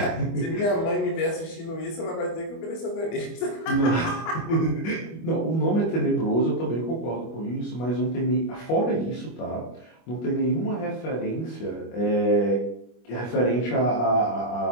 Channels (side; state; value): right; late; 25 ms